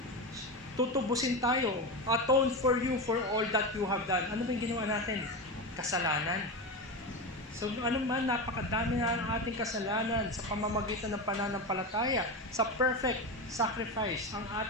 Tutubusin tayo, atone for you for all that you have done. Ano ba yung ginawa natin? Kasalanan. So ano man, napakadami na ang ating kasalanan sa pamamagitan ng pananampalataya, sa perfect sacrifice, ang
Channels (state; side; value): normal; both; correlation 0.19